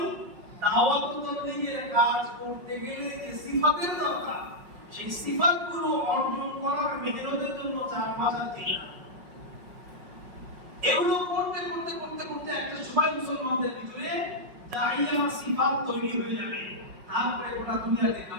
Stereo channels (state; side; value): late; left; 5.5 ms